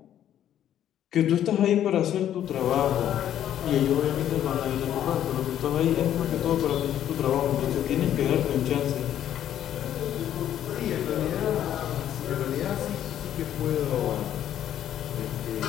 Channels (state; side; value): quieter; right; 10.9 dB